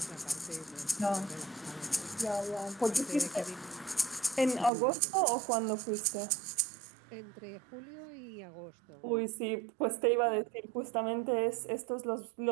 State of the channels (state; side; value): drops out; left; at 4.7 s